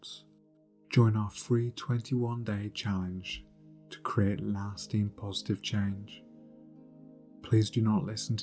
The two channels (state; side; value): identical; both; correlation 1.00